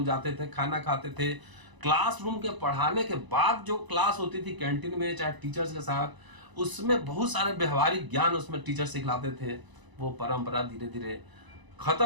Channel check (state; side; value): late; left; 1.0 ms